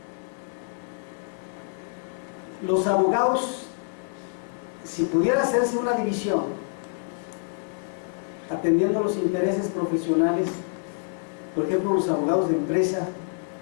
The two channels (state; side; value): silent; right; digital silence